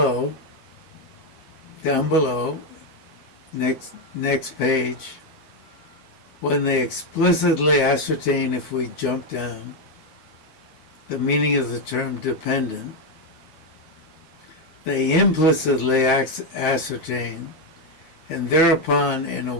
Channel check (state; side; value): late; right; 13 ms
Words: next page, when they explicitly ascertain, if we jump down, the meaning of the term dependent, they implicitly ascertain, and thereupon in